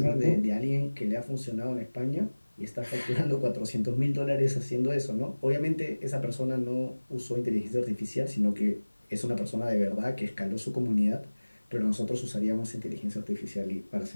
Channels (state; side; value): inverted; both; correlation -1.00